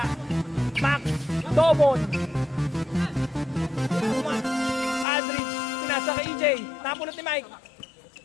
Max Dobon. Aldrich. Pinasa kay EJ. Napulot ni Mike.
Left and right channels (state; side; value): drops out; right; at 5.1 s